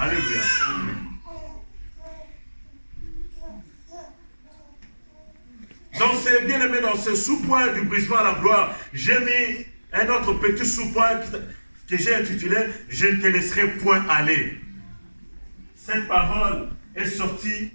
Dans ce sous-point du brisement à la gloire, j'ai mis un autre petit sous-point que j'ai intitulé « Je ne te laisserai point aller ». Cette parole est sortie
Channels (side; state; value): both; inverted; correlation -1.00